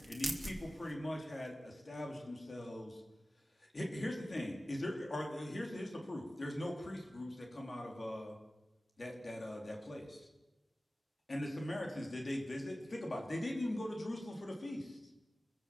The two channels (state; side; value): normal; both; correlation 0.96